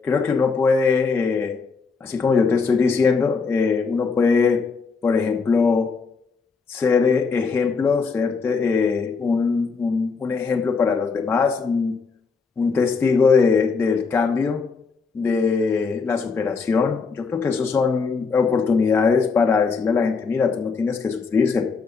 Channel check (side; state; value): right; quieter; 4.9 dB